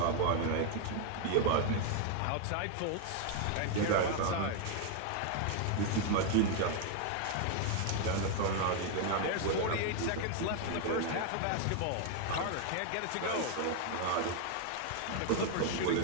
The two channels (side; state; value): both; different; correlation 0.00